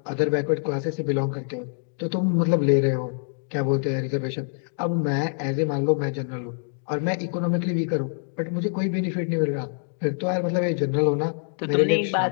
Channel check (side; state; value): right; silent; 58 dB below the other